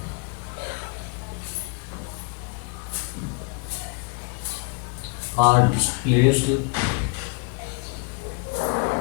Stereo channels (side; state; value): right; quieter; 34.8 dB